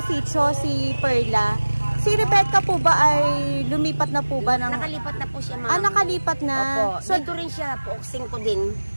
sitio, si Perla. Si Rebecca po ba ay lumipat na po ba? Nakalipat na po siya, ma'am. Nakalipat na. Opo. So, dito rin siya, Pook 5 din.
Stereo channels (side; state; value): both; inverted; correlation -1.00